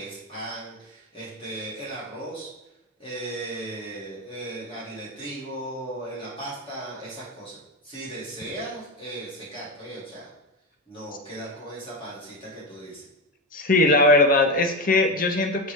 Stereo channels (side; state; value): both; normal; correlation 0.16